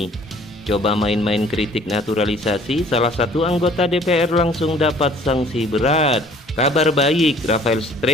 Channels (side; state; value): both; normal; correlation 0.54